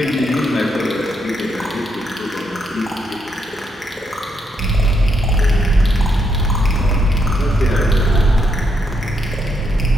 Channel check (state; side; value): normal; both; correlation 0.78